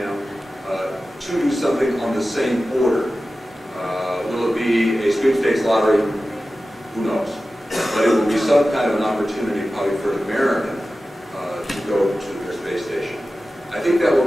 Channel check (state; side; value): normal; both; correlation 0.95